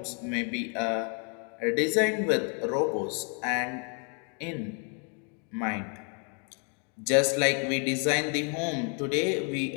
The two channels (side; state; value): right; quieter; 38.4 dB